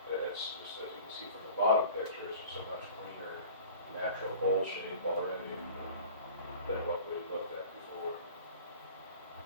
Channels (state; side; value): inverted; both; correlation -0.43